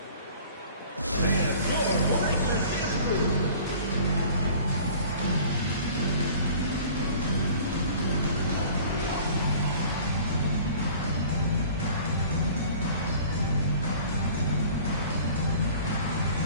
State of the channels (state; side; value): inverted; both; correlation -0.47